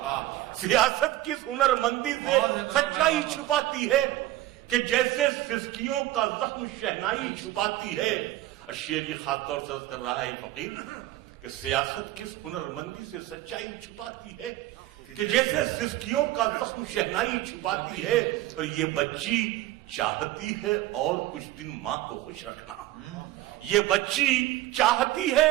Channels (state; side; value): quieter; left; 15.6 dB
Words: سیاست کس ہنر مندی سے سچائی چھپاتی ہے، کہ جیسے سسکیوں کا زخم شہنائی چھپاتی ہے. شعر یہ خاص طور سے عرض کر رہا ہے فقیر کہ سیاست کس ہنر مندی سے سچائی چھپاتی ہے، کہ جیسے سسکیوں کا زخم شہنائی چھپاتی ہے. اور یہ بچی چاہتی ہے اور کچھ دن ماں کو خوش رکھنا، یہ بچی چاہتی ہے